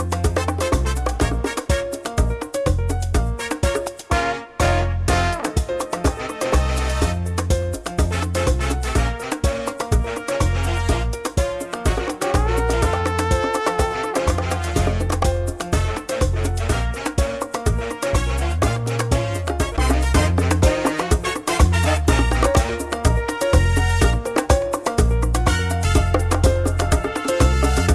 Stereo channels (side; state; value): both; identical; correlation 1.00